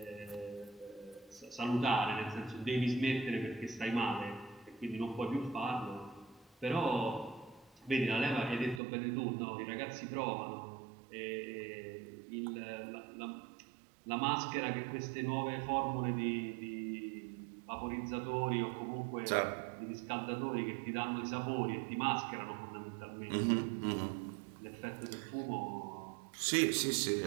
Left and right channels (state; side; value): drops out; left; at 8.8 s